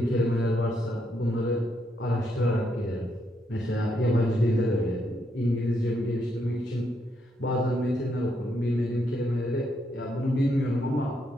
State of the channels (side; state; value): both; normal; correlation 0.77